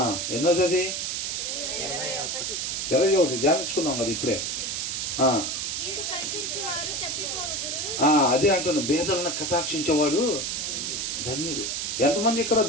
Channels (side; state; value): right; noise; hiss, 2 dB below the sound